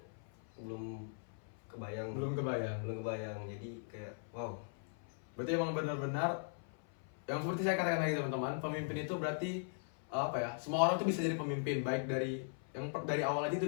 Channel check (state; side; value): silent; right; 52 dB below the other